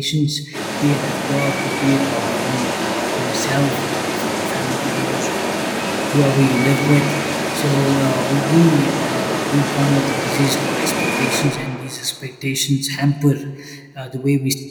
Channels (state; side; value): identical; both; correlation 1.00